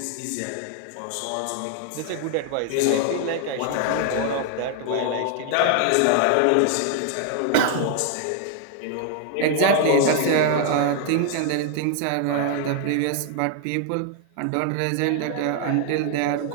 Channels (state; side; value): different; both; correlation 0.00